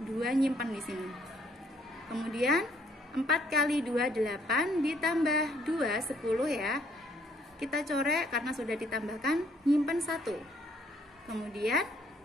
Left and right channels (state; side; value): normal; both; correlation 0.66